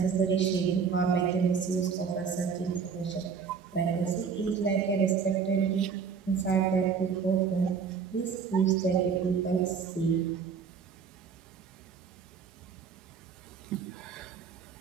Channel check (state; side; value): quieter; left; 6.2 dB